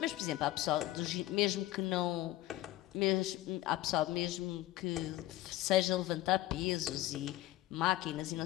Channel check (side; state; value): right; quieter; 16.0 dB